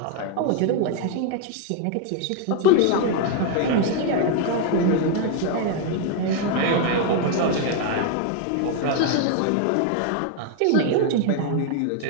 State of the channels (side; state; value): both; different; correlation 0.00